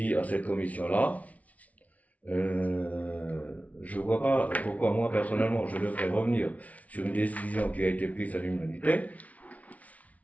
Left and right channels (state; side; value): late; right; 0.069 ms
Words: à cette commission-là. Je vois pas pourquoi moi personnellement je devrais revenir sur une décision qui a été prise à l'unanimité.